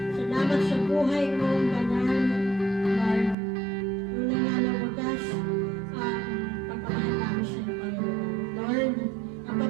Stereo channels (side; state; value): left; drops out; at 3.4 s